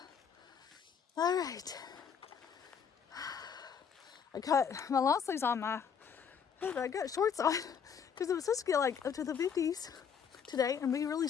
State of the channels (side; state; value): right; quieter; 7.2 dB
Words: All right. I cut my long sleeves on my head. I got shorts on because it was supposed to get like up to the 50s today and be really